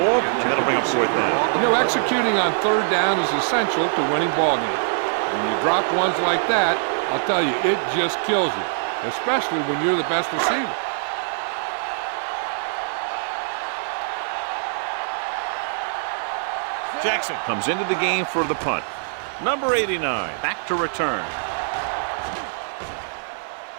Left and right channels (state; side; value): silent; left; digital silence